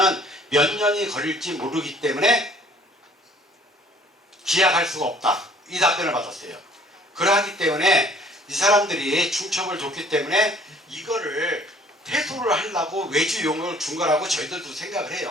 몇 년이 걸릴지 모르기 때문에 기약할 수가 없다. 이 답변을 받았어요. 그러하기 때문에 이 사람들이 중첩을 줬기 때문에 이거를 퇴소를 하려고 외주 용역을 준 거라고 저희들도 생각을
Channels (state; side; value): normal; both; correlation 0.55